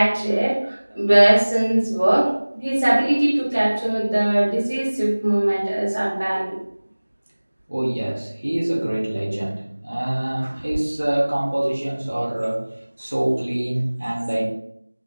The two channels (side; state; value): both; inverted; correlation -1.00